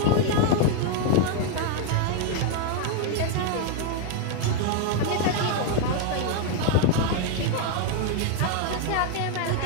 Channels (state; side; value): different; both; correlation 0.01